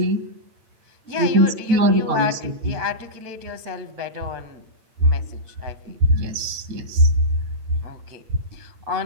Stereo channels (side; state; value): left; late; 8.7 ms